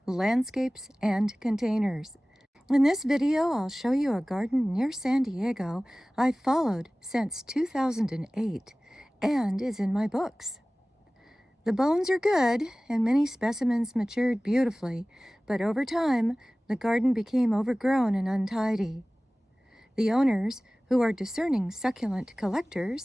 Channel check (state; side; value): normal; both; correlation 0.98